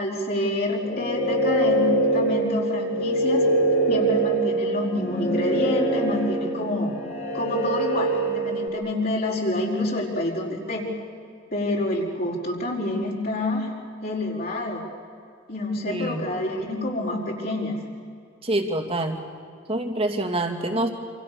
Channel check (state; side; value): normal; both; correlation 0.13